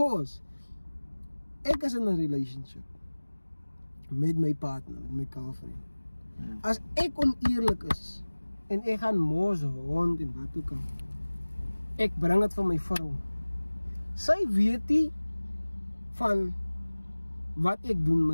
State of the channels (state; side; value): inverted; both; correlation -1.00